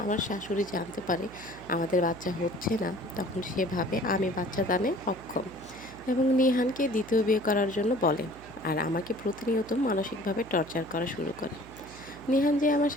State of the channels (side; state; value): right; noise; hum, 19 dB below the sound